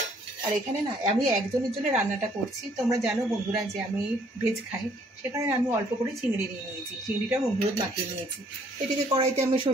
আর এখানে না আমি একজনের জন্য রান্নাটা করছি। তোমরা জানো বন্ধুরা যে আমি ভেজ খাই, সেখানে আমি অল্প করে চিংড়ি নিয়ে নিয়েছি। চিংড়িটা হলুদ মাখিয়ে নিয়েছি। এদিকে কড়াইতে আমি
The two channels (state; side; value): normal; both; correlation 0.63